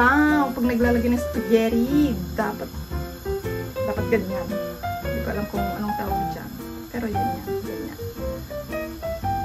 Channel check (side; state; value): both; identical; correlation 1.00